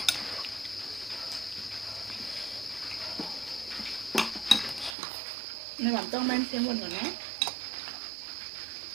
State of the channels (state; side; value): drops out; left; at 5.0 s